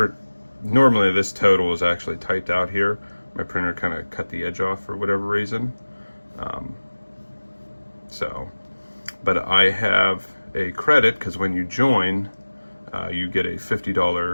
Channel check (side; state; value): both; inverted; correlation -1.00